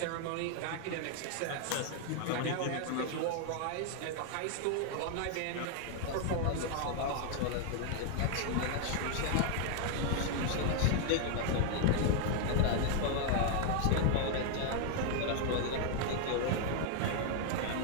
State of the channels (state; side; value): different; both; correlation 0.00